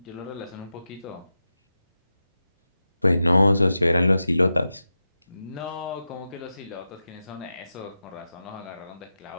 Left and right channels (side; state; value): both; inverted; correlation -0.91